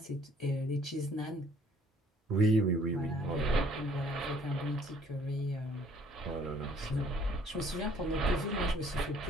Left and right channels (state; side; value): normal; both; correlation 0.60